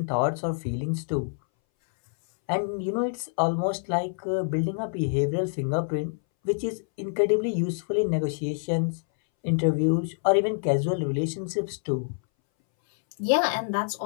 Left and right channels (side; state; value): right; silent; 61 dB below the other